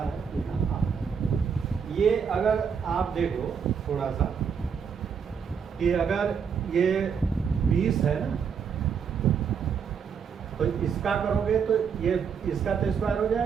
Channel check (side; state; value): left; quieter; 6.8 dB